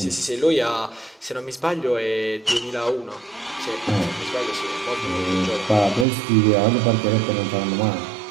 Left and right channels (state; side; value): drops out; left; at 6.1 s